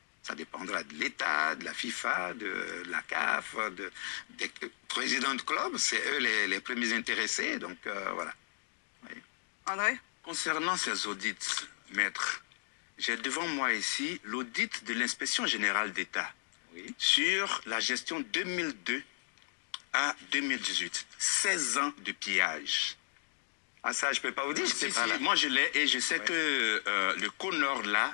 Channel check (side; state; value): right; silent; digital silence